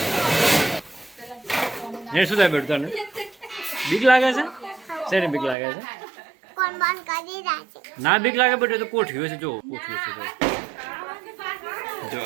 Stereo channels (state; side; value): drops out; left; at 5.6 s